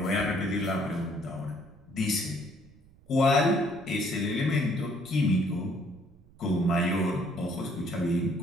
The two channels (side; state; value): right; noise; rumble, 26 dB below the sound